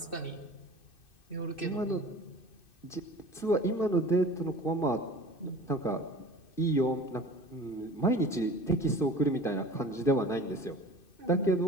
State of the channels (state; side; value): late; right; 2.6 ms